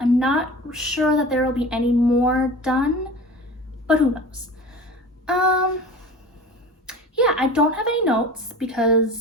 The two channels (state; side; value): normal; both; correlation 0.37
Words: I'm not sure that there will be any more done, but who knows. Yeah, I don't have any notes